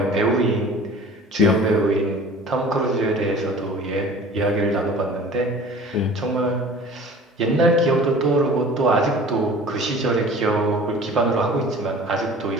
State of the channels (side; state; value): both; normal; correlation 0.44